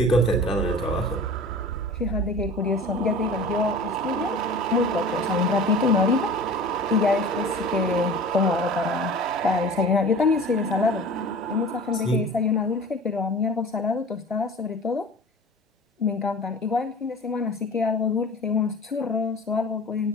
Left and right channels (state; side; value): normal; both; correlation 0.40